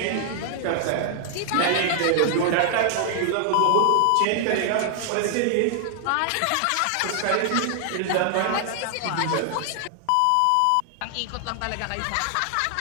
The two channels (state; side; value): different; both; correlation 0.00